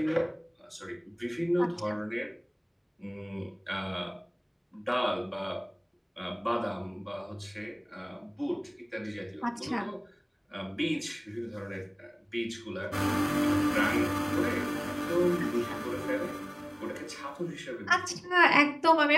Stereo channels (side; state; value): both; identical; correlation 1.00